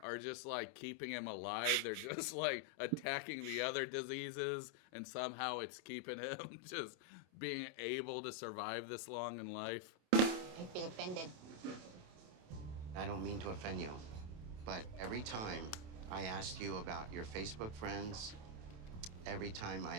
just like keeping him alive. They're just like attacking the other diseases, and somehow it's keeping him just being able to survive this long in life. I feel offended. I don't mean to offend you, but every time I asked you about your Facebook friends, every time I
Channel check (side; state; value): left; late; 28 ms